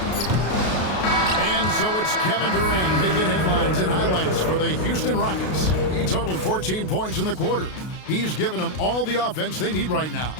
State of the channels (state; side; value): late; right; 33 ms